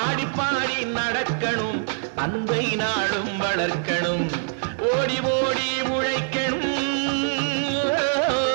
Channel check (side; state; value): left; silent; digital silence